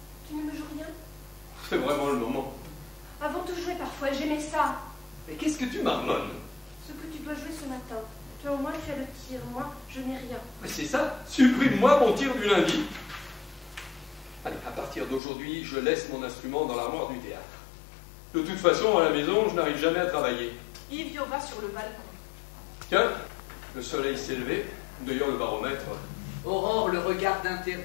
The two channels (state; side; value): drops out; right; at 15.2 s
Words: Tu ne me joues rien? C'est vraiment le moment. Avant de jouer parfois, j'aimais ça. Mais qu'est-ce que tu marmonnes? Ce que tu dois jouer ce matin. Toi au moins tu as le tir, moi je n'ai rien. Mais c'est ça, supprime-moi mon tir du lundi. Allez, à partir d'aujourd'hui, je laisse mon instrument dans l'armoire du théâtre. De toute façon, à la maison, je n'arrive jamais à travailler. Yves va sur le balcon. Tiens, le soleil s'est levé. D'ailleurs, le baromètre... Aurore le regarde